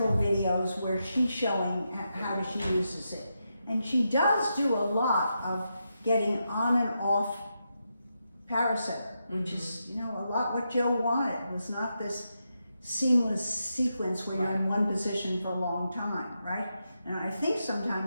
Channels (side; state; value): both; inverted; correlation -0.85